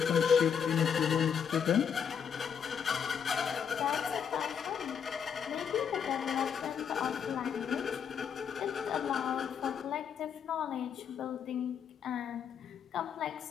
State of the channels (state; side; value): quieter; right; 7.5 dB